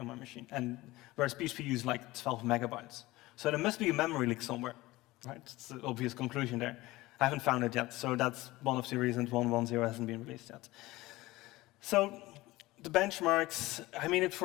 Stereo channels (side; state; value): right; quieter; 19.2 dB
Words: my machine, and whereas PHP used like 12 megabytes. So there must be a memory leak somewhere, right? It's the obvious conclusion there. I haven't found it yet, so that's one of the reasons 1.1.0 hasn't been released yet. So the benchmarks, I mean,